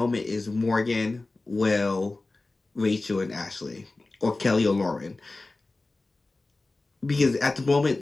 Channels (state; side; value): quieter; right; 3.2 dB